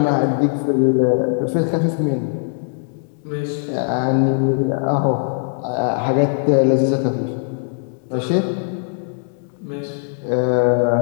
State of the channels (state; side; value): silent; right; 66 dB below the other